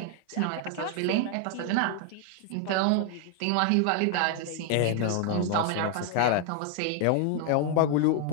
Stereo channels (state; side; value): different; both; correlation 0.00